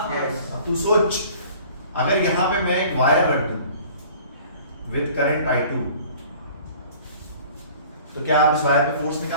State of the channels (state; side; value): inverted; both; correlation -0.48